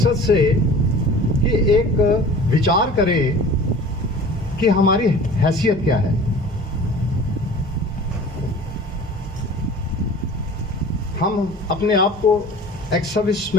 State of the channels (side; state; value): both; normal; correlation 0.42